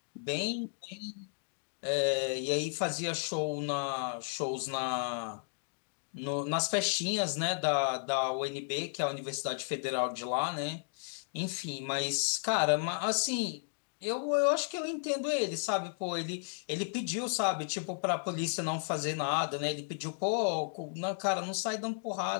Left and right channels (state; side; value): silent; right; digital silence